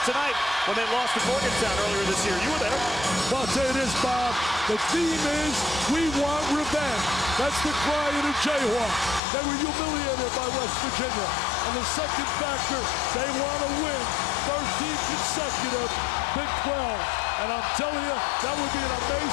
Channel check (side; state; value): right; drops out; at 9.2 s